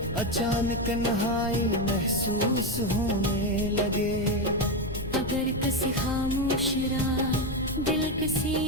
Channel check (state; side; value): noise; left; rumble, 10 dB below the sound